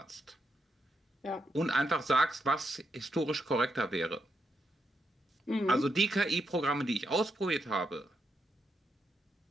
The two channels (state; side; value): normal; both; correlation 0.81